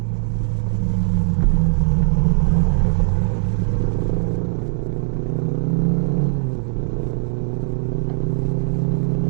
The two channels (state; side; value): silent; left; 66 dB below the other